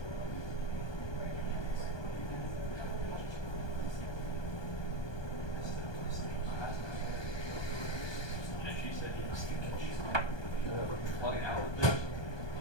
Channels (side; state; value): right; late; 1.2 ms